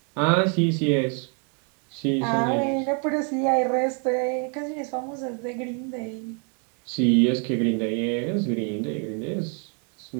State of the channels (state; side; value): quieter; left; 39.9 dB